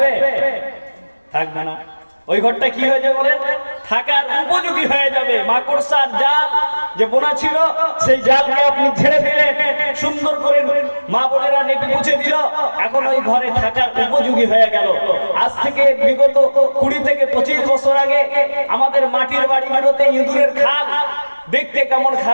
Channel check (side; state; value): both; inverted; correlation -1.00